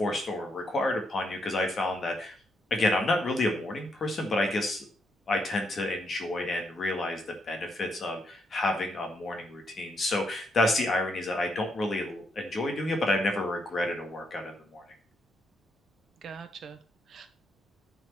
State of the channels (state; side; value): normal; both; correlation 0.77